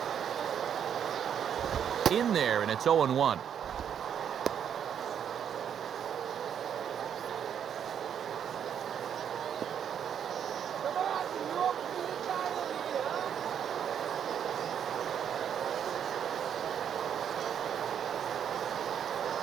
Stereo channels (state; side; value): quieter; left; 8.6 dB